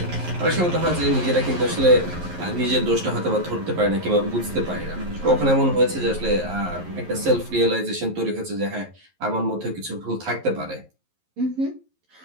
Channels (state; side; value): late; left; 11 ms